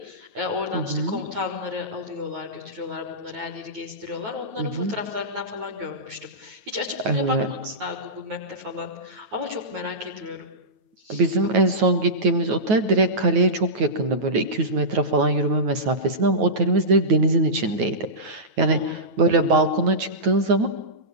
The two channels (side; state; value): left; late; 9.3 ms